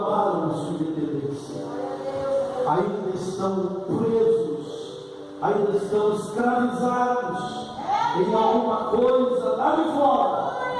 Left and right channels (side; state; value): both; identical; correlation 1.00